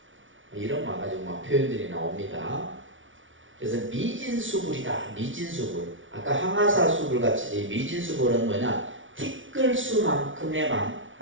이런 와가지고 막 표현들이 나옵니다. 그래서 미진수불이다. 미진수불. 아까 항아사수불 같이 미진수불은 뭐냐? 티끌수만큼의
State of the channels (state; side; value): late; left; 0.56 ms